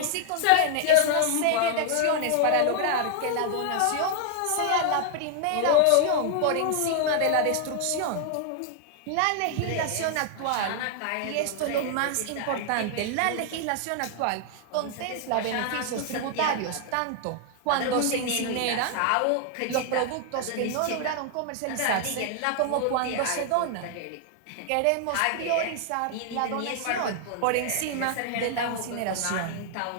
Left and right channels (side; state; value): both; different; correlation 0.00